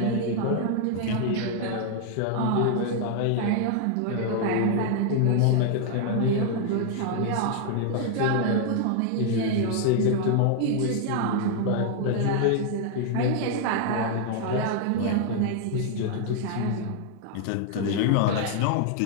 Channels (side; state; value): both; different; correlation 0.00